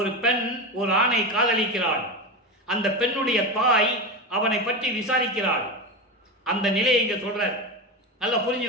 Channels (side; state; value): both; normal; correlation 0.20